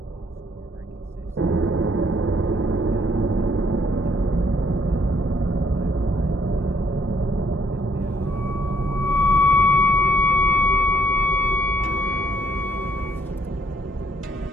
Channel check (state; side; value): normal; both; correlation 0.68